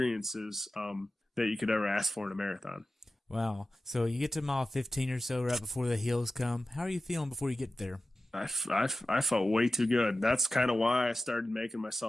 that you could ever ask for in a marathon. Wow. So you get to mile 15 or so right before the hills come. How are you feeling before you get there? I felt way too good. That's kind of why I started making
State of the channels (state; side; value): normal; both; correlation 0.94